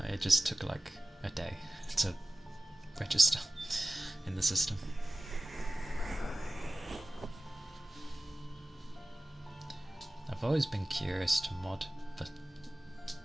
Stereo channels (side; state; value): both; normal; correlation 0.97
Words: it just took like a day to register in the system. I've always been curious to mod, but